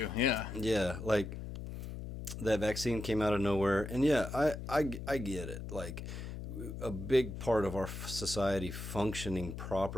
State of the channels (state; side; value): noise; left; hum, 8 dB below the sound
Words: Yeah. Yeah, that vaccine came out of nowhere, and yeah, I get it. A big part of our society functioning